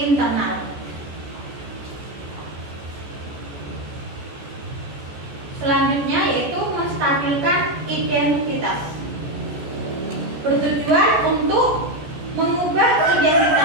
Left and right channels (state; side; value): late; left; 14 ms